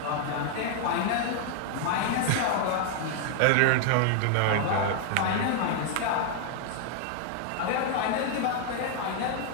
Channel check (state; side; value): different; both; correlation 0.00